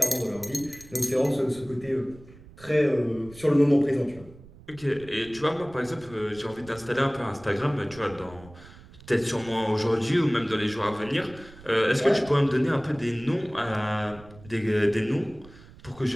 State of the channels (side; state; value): right; noise; rumble, 21 dB below the sound